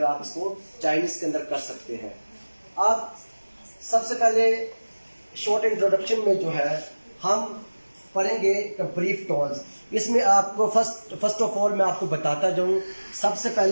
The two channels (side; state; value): both; inverted; correlation -1.00